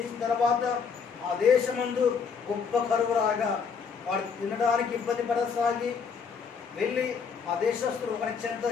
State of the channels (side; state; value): right; quieter; 5.9 dB